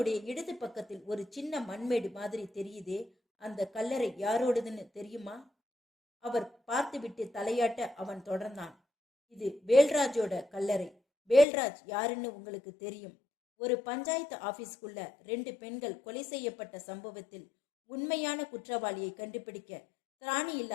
இடது பக்கத்தில் ஒரு சின்ன மண்மேடு மாதிரி தெரியுதே, அந்த கல்லறை யாரோடதுன்னு தெரியுமா? அவர் பார்த்துவிட்டு தலையாட்ட அவன் தொடர்ந்தான். இது வேல்ராஜோட கல்லறை. வேல்ராஜ் யாருன்னு உங்களுக்கு தெரியும். ஒரு பஞ்சாயத்து ஆபீஸ்க்குள்ள 2 பெண்கள் கொலை செய்யப்பட்ட சம்பவத்தில் உண்மையான குற்றவாளியை கண்டுபிடிக்க திராணி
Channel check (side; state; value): right; drops out; at 11.5 s